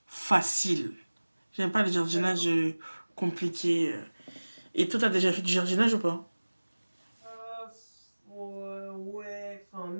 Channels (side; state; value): both; inverted; correlation -1.00